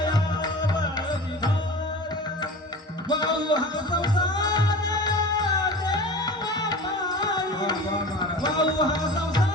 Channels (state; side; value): normal; both; correlation 0.35